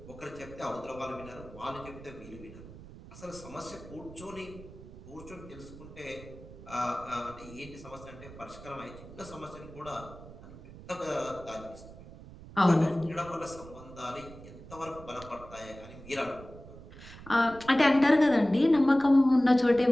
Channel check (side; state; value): right; noise; rumble, 17 dB below the sound